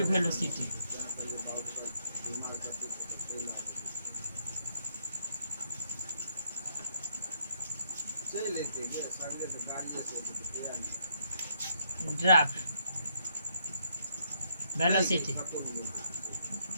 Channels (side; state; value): both; inverted; correlation -0.73